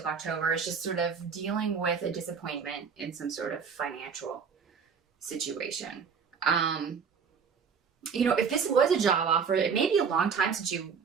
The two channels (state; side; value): quieter; left; 6.2 dB